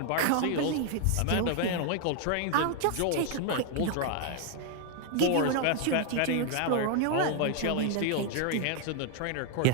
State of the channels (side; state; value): both; different; correlation 0.00